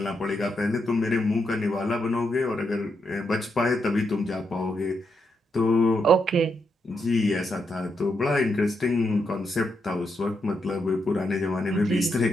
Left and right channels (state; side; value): normal; both; correlation 0.81